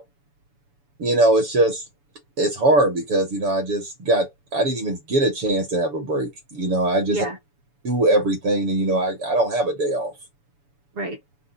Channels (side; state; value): left; late; 7.0 ms